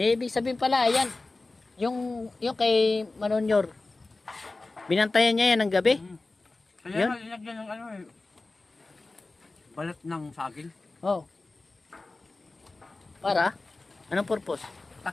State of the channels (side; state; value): right; quieter; 3.3 dB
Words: sabihin pala, yan. Yung kay Manonyor. Binantayan niya yan ng gabi. Kaya Yun? nga linagyan ng ano eh. Balat ng saging. Oh. Para? Anong purpose?